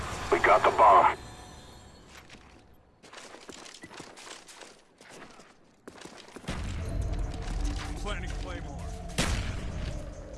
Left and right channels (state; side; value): identical; both; correlation 1.00